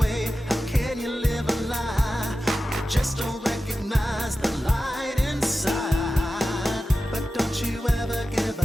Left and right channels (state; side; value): normal; both; correlation 0.93